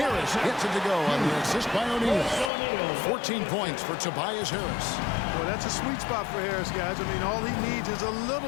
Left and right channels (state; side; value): drops out; right; at 2.5 s